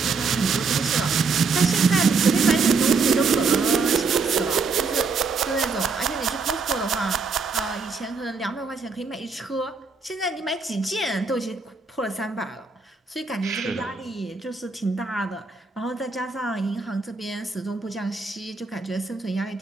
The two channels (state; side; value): quieter; left; 4.5 dB